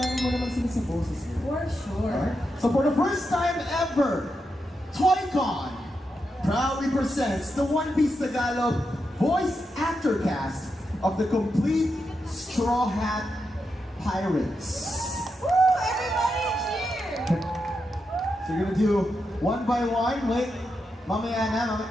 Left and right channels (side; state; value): both; normal; correlation 0.86